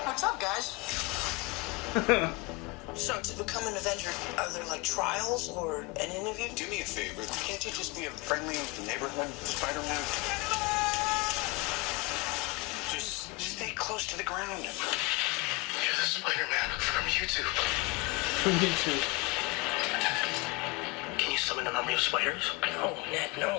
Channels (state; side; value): quieter; right; 25.4 dB